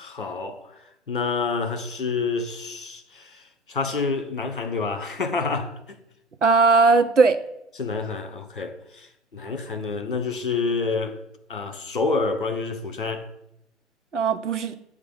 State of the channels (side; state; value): both; normal; correlation 0.37